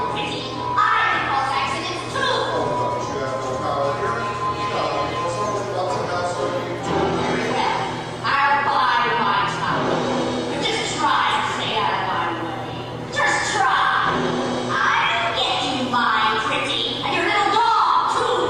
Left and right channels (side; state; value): both; identical; correlation 1.00